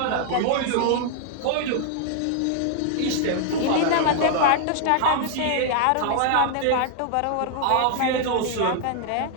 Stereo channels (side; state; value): both; different; correlation 0.00